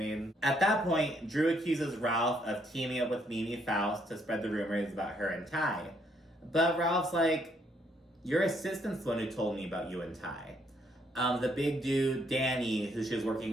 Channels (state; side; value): normal; both; correlation 0.70